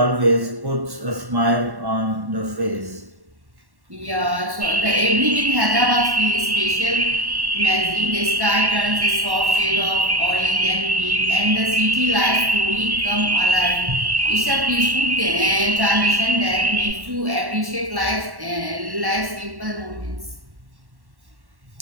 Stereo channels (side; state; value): left; late; 1.1 ms